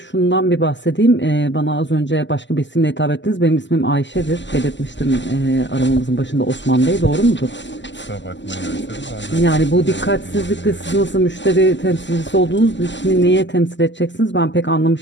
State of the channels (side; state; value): right; late; 0.53 ms